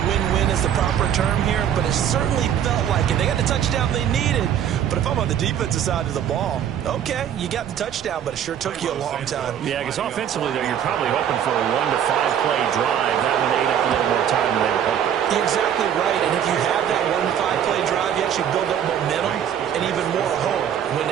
is the proper term here, but it certainly felt like it. They got the touchdown they needed. But if I'm on the defensive side of the ball, okay, you got the touchdown, but it sure took you a long time. Yeah, because offensively, though, you're probably hoping for a 1 to 5 play drive. That one ate up a little more time than they were hoping. You're exactly right, and if you have that 1 to 5 play drive, you actually build up momentum and even more hope. When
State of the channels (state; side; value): quieter; left; 9.4 dB